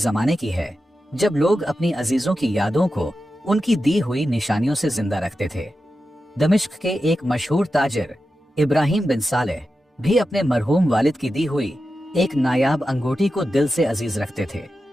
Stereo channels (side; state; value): both; normal; correlation 0.91